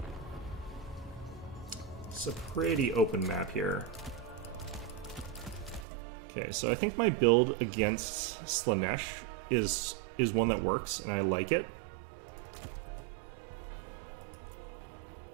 It's a pretty open map here. Okay, so I think my build against Slaanesh is one that works, and I like it.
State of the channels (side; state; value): left; drops out; at 5.9 s